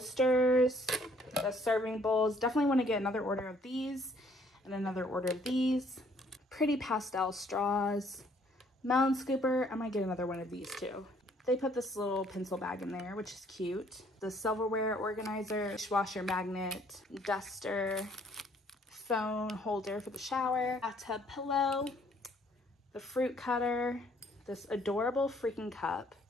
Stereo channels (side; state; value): both; normal; correlation 0.63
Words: the serving bowls. Definitely want to get another order of these and another order of these. Pretty pastel straws. Melon scooper. I might get another one of these too. They put this little pencil bag in there, which is cute. The silverware organizer, dishwasher magnet, duster, phone holder for the shower, bathtub pillow, the fruit cutter, this adorable freaking cup,